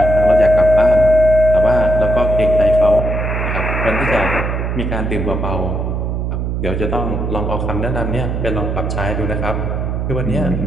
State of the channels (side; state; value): right; noise; hum, 2 dB below the sound